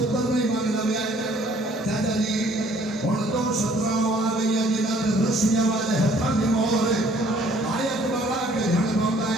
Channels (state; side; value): normal; both; correlation 0.59